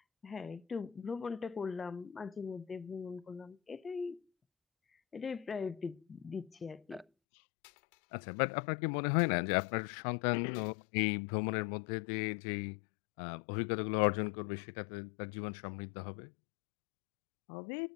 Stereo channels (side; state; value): right; drops out; at 7.1 s